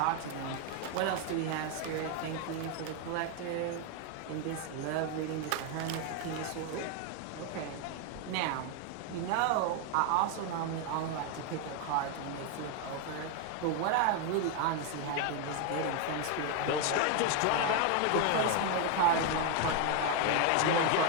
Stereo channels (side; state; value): both; different; correlation 0.01